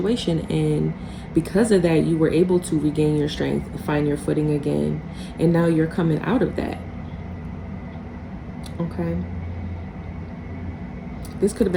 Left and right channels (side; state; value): both; identical; correlation 1.00